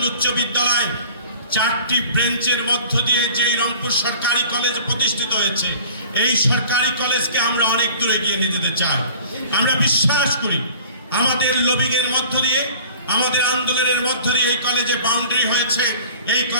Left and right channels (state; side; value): inverted; both; correlation -0.45